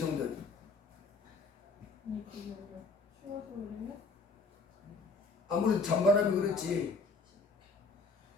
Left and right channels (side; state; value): right; quieter; 3.9 dB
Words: 아무래도 찬바람이 그렇지.